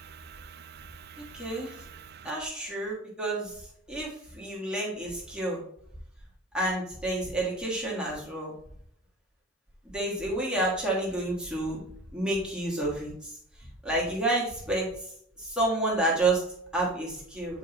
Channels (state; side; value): normal; both; correlation 0.36